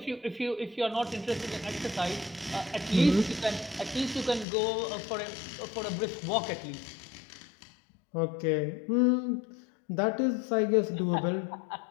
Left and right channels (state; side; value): drops out; right; at 4.5 s